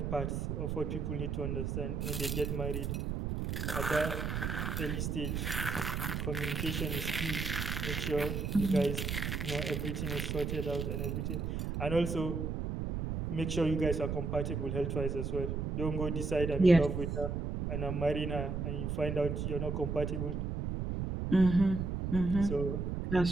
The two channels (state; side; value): noise; right; rumble, 2 dB below the sound